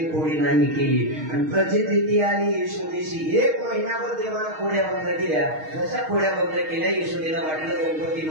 कोडी नाही केली आणि प्रचिती आली यशोदेशी. 1 महिनाभर देवाला खोड्या बंद केल्या. जशा खोड्या बंद केल्या यशोदेला वाटलं गणपती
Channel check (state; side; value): late; left; 6.4 ms